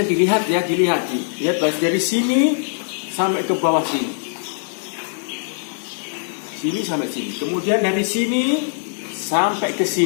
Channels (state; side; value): silent; right; digital silence